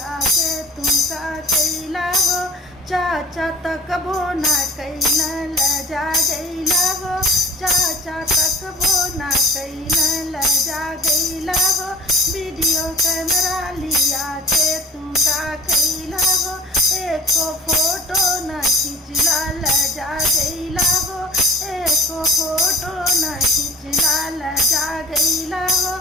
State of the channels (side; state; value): both; normal; correlation 0.45